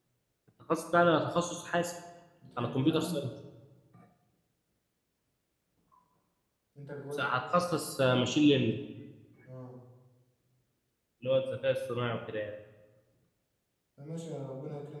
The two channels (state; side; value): identical; both; correlation 1.00